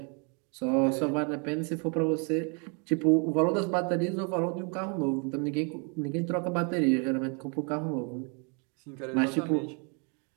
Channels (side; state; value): left; quieter; 36.2 dB